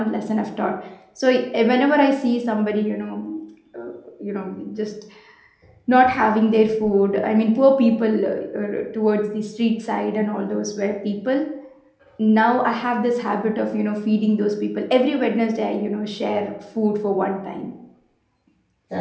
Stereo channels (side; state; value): both; identical; correlation 1.00